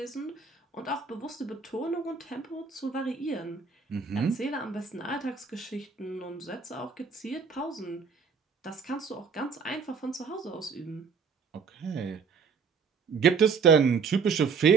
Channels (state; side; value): quieter; left; 5.5 dB